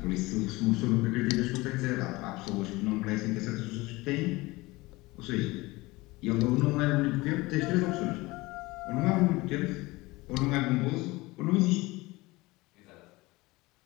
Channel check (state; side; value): quieter; right; 21.6 dB